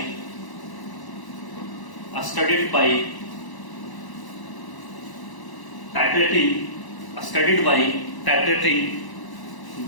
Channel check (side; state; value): right; late; 1.0 ms